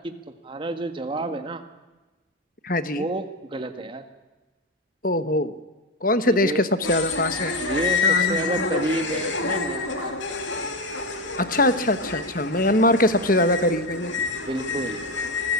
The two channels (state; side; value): normal; both; correlation 0.14